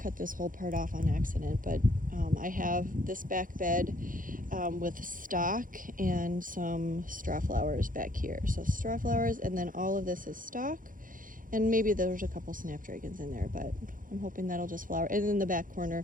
cut this whole part off on accident, but I have this back bed with stock and some straw flowers back here. So straw flowers, and then all of this is stock, and maybe there's a couple snapdragons in there, but I'm hoping that'll just flower. And in the back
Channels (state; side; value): late; left; 0.39 ms